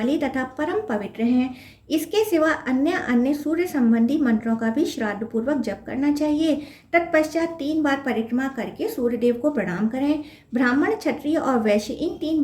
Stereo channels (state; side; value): identical; both; correlation 1.00